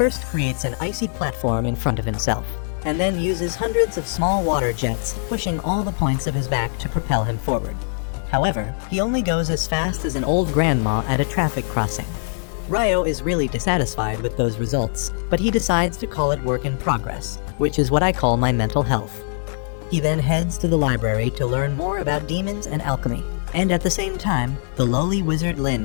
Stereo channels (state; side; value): silent; right; 64 dB below the other